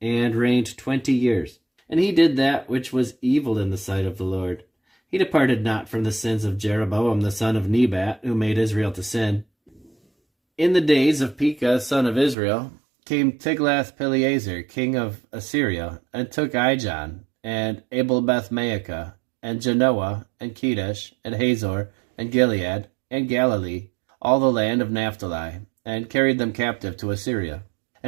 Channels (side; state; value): left; drops out; at 12.4 s